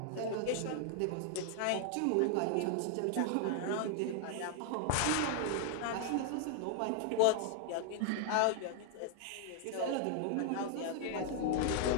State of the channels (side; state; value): both; different; correlation 0.00